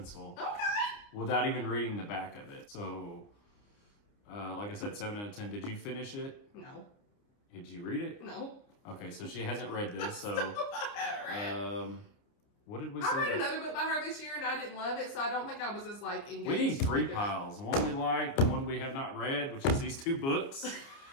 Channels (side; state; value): right; late; 29 ms